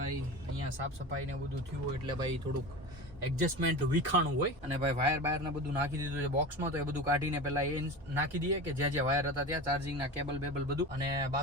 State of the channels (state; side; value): normal; both; correlation 0.30